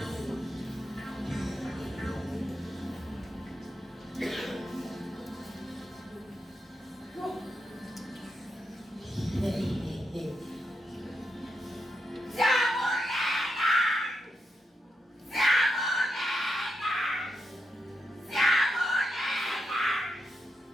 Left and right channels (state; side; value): normal; both; correlation 0.84